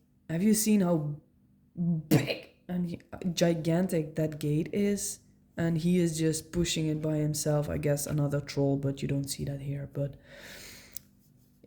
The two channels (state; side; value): identical; both; correlation 1.00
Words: have you seen how big and gigantic that gate is? And he is just pushing it by himself. I guess another troll, but you don't see that here. But